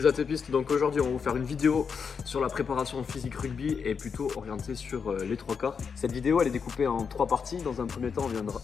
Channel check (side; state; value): right; quieter; 6.1 dB